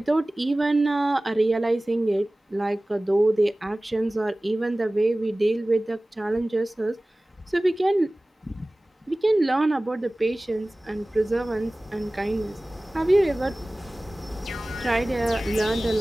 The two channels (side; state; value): both; normal; correlation 0.98